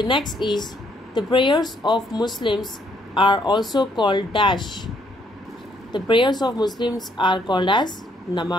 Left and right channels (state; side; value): normal; both; correlation 0.70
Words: next is, the prayers of Muslims are also called dash. The prayers of Muslims are called as